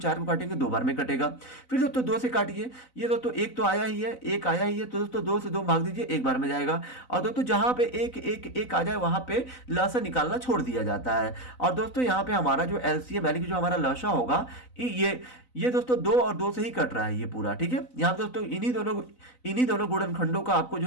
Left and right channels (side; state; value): right; late; 4.0 ms